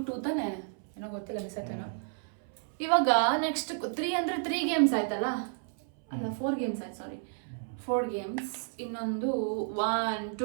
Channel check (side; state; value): left; silent; 57 dB below the other